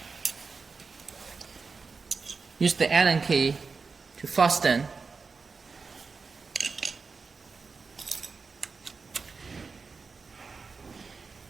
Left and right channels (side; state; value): left; quieter; 4.7 dB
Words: Use the Allen key to fasten.